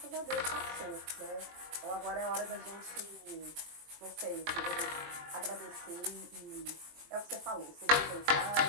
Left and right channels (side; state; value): left; late; 21 ms